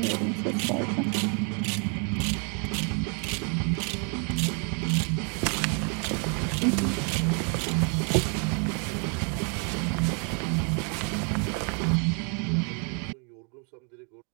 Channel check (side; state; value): left; quieter; 37.8 dB